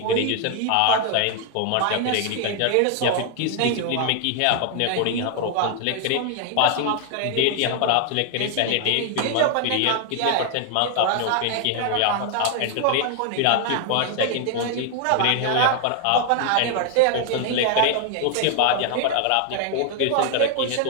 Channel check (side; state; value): both; different; correlation 0.00